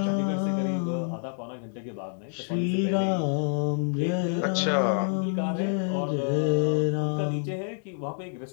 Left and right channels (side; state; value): right; silent; 60 dB below the other